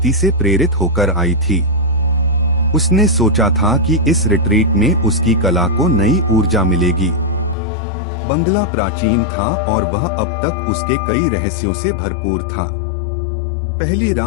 से प्रेरित होकर आई थी। उसने सोचा था कि इस रिट्रीट में उसकी कला को नई ऊर्जा मिलेगी। बंगला प्राचीन था और वह अब तक उसके कई रहस्यों से भरपूर था। पहली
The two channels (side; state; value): right; drops out; at 7.6 s